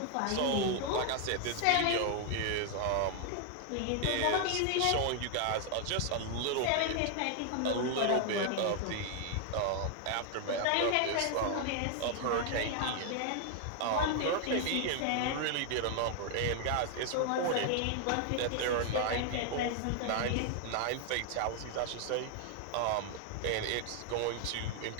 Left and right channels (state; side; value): different; both; correlation 0.00